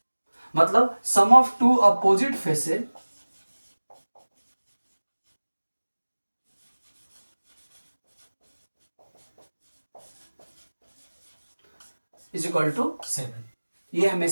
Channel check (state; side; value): inverted; both; correlation -1.00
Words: मतलब sum of two opposite faces is equal to 7, ये